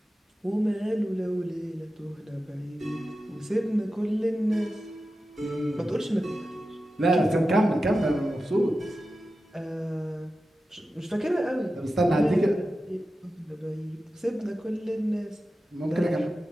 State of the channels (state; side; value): normal; both; correlation 0.92